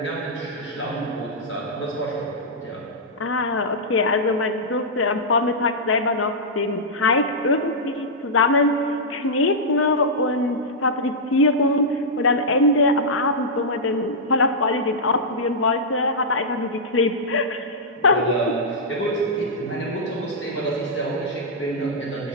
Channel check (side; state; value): both; normal; correlation -0.10